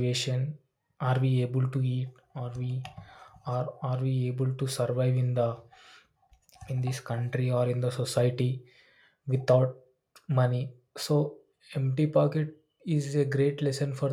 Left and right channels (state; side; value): identical; both; correlation 1.00